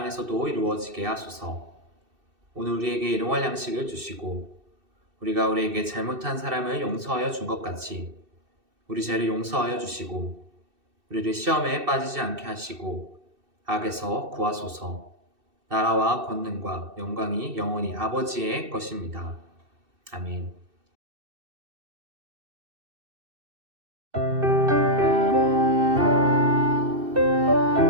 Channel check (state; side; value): late; left; 2.6 ms